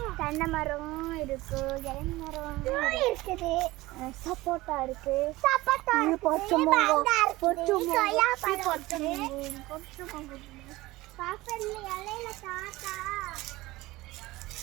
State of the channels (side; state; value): left; quieter; 19.3 dB